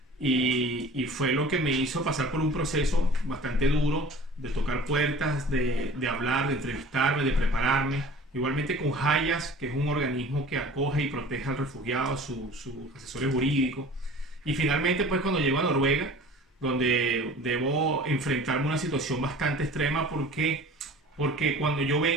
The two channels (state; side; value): normal; both; correlation 0.44